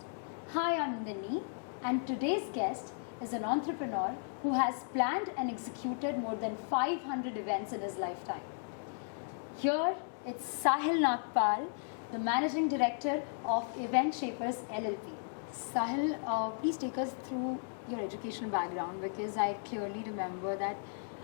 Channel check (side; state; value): right; silent; digital silence